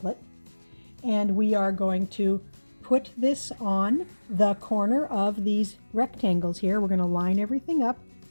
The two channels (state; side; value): inverted; both; correlation -1.00